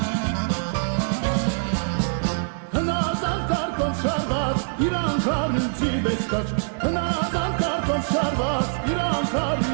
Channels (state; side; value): silent; left; digital silence